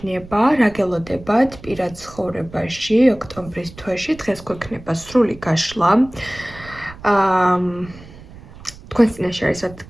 რა გელოდებათ პირად ცხოვრებაში ოქტომბრის თვეში. დღეს გვექნება სრული გაშლა. თქვენს წინაშე არის, რა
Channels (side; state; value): right; noise; rumble, 18 dB below the sound